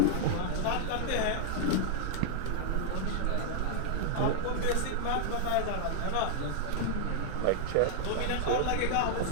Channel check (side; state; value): both; different; correlation -0.01